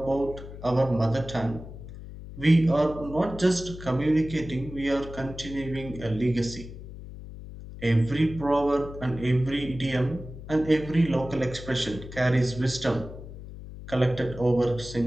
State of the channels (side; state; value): left; noise; hum, 13 dB below the sound